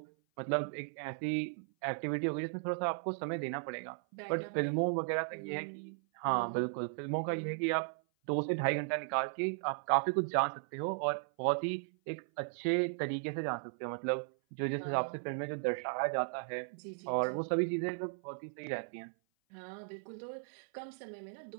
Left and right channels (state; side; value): silent; left; 54 dB below the other